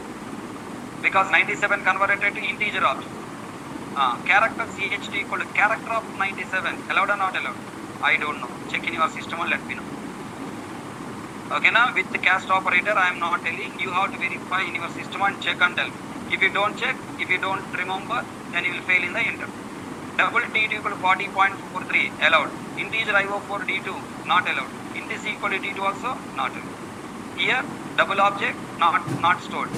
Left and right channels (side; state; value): both; identical; correlation 1.00